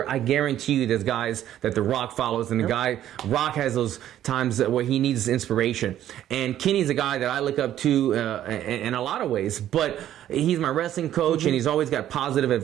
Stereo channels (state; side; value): quieter; left; 11.8 dB